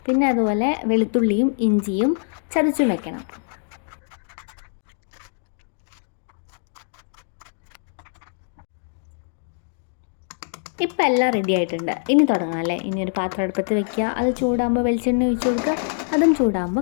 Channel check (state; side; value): silent; right; digital silence